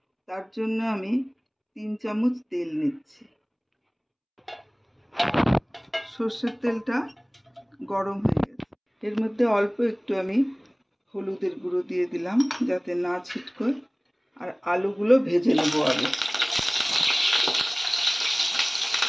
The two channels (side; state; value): both; identical; correlation 1.00